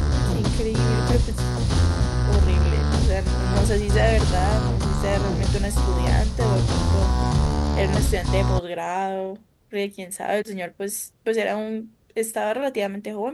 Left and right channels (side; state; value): both; identical; correlation 1.00